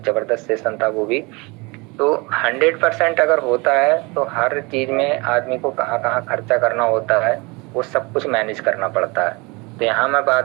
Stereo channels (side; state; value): left; quieter; 26.7 dB